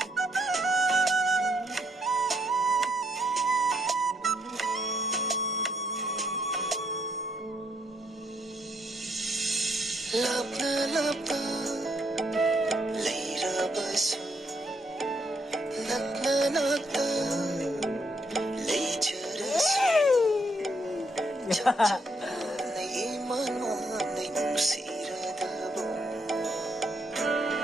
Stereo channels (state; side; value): normal; both; correlation 0.74